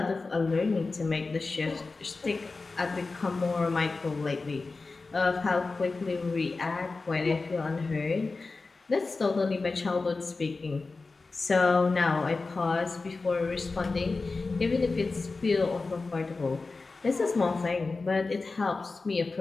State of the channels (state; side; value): quieter; right; 3.8 dB